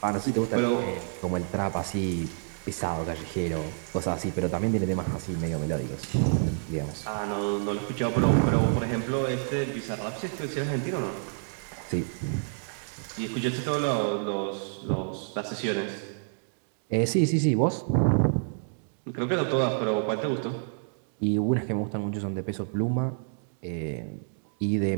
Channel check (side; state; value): left; silent; digital silence